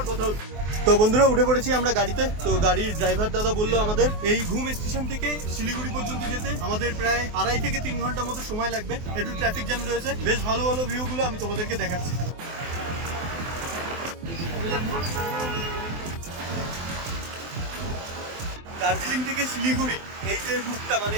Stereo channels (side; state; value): left; late; 24 ms